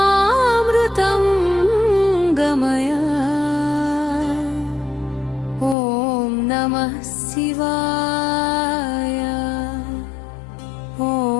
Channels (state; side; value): drops out; right; at 5.8 s